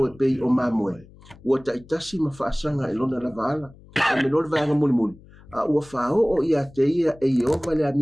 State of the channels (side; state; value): left; noise; hum, 23 dB below the sound